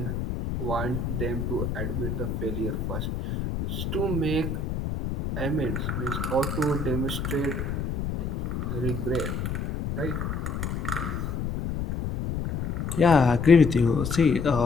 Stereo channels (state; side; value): noise; left; rumble, 3 dB below the sound